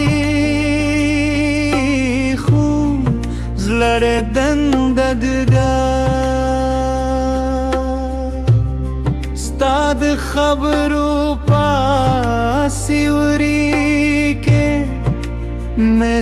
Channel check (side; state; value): both; identical; correlation 1.00